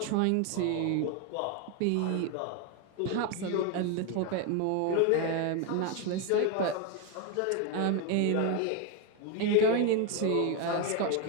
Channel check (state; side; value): different; both; correlation 0.02